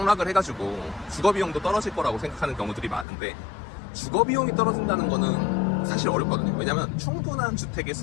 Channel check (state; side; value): drops out; right; at 3.1 s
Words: 해가지고 주거비용도 떨어질 거라고 생각하는 경우들이 많은데, 주거비용이 떨어진다는 거는 사실 어렵거든요. 왜냐면 충분한 주택의